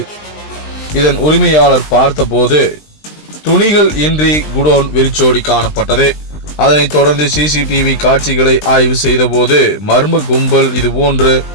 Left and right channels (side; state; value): right; late; 20 ms